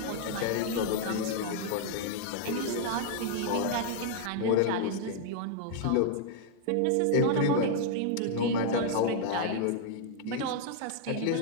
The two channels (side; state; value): both; different; correlation 0.00